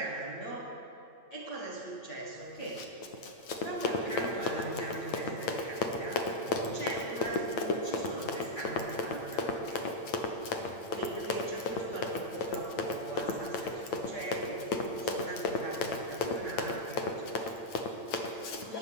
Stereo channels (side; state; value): right; late; 8.9 ms